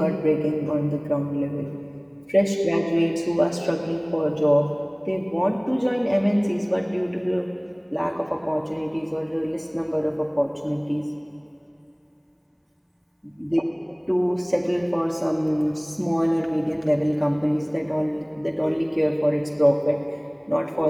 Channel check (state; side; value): identical; both; correlation 1.00